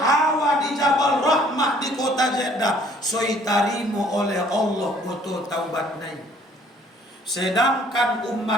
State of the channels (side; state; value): both; normal; correlation 0.59